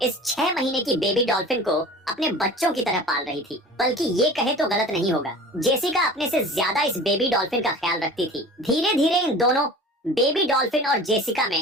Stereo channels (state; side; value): normal; both; correlation 0.40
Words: इस 6 महीने की बेबी डॉल्फिन को अपने बच्चों की तरह पाल रही थी। बल्कि ये कहे तो गलत नहीं होगा, जेसिका अपने से ज्यादा इस बेबी डॉल्फिन का ख्याल रखती थी। धीरे धीरे इन दोनों बेबी डॉल्फिन और जेसिका